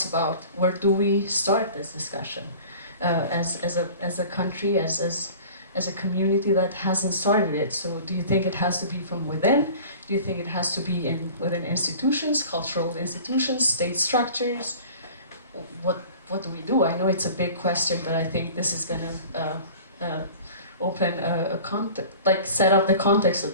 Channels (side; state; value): both; inverted; correlation -0.42